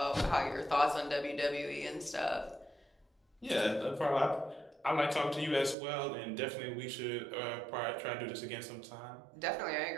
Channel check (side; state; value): left; drops out; at 5.8 s